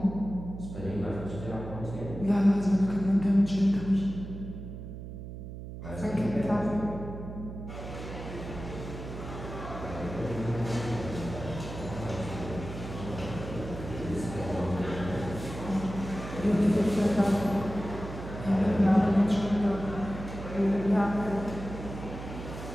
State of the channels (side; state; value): right; noise; hum, 10 dB below the sound